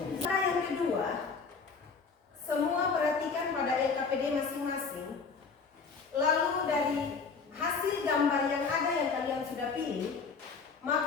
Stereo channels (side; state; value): right; quieter; 5.1 dB